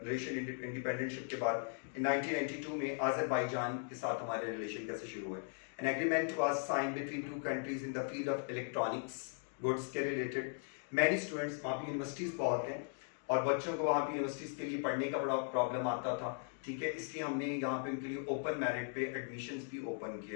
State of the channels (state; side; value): silent; right; 52 dB below the other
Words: इंडिपेंडेंटशिप के बाद in 1992 में Azerbaijan के साथ हमारे रिलेशन कैसे शुरू हुए. An agreement was signed between two countries in the field of electronics goods के related. Many students वहाँ पे यूनिवर्सिटीज़ बहुत हैं और बच्चों को वहाँ पे यूनिवर्सिटीज़ के लिए पढ़ने का बड़ा प्रॉब्लम आता था. ठीक है, इसलिए हमने यहाँ पे उनके लिए ओपन मेरिट पे एडमिशन्स भी ओपन